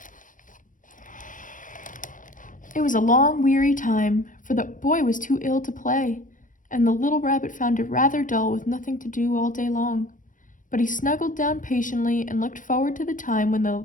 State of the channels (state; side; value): late; right; 0.38 ms